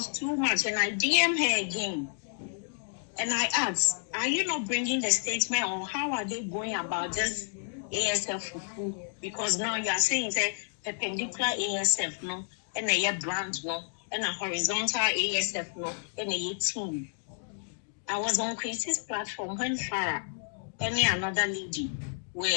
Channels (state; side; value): silent; right; digital silence